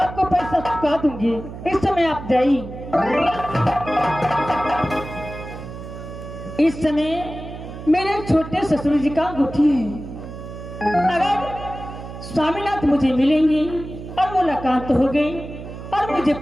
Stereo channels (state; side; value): noise; right; hum, 11 dB below the sound